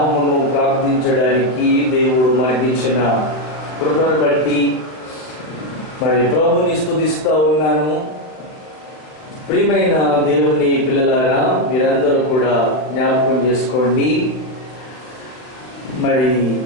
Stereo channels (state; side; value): late; right; 40 ms